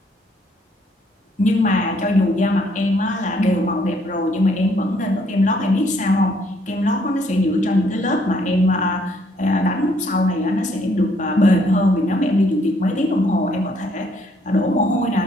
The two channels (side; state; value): both; normal; correlation 0.68